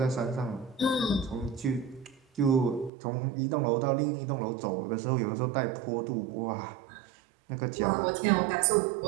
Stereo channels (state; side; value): drops out; left; at 2.9 s